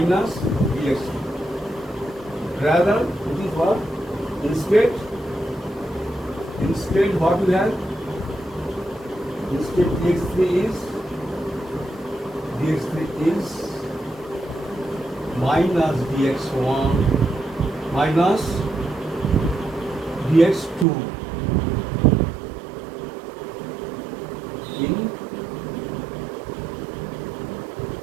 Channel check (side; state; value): left; drops out; at 20.9 s